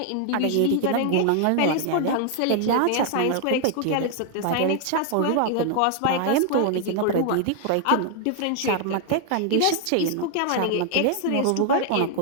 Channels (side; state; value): both; different; correlation 0.00